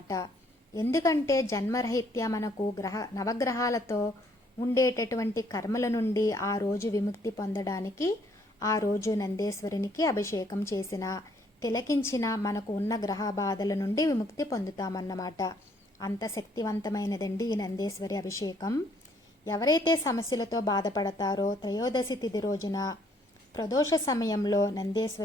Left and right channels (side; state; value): both; normal; correlation 0.66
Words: ఎందుకంటే జన్మరహిత్య మనకు నవగ్రహాలతో ఉండేటటువంటి కర్మల నుండి ఆ రోజు విముక్తి పొందడానికి ఆ రోజు నందేశ్వరునికి అభిషేకం చేసిన, తిలకించిన మనకు ఉన్న గ్రహ బాధల నుండి విముక్తి పొందుతామన్నమాట. అంత శక్తివంతమైనదండి ఈ నందేశ్వరి అభిషేకం. ఎవరైతే సమస్యలతో బాధపడతారో త్రయోదశి తిథి రోజున ప్రదోష సమయంలో